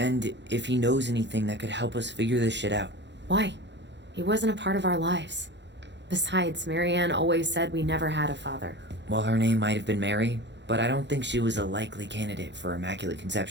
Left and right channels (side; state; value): left; late; 0.52 ms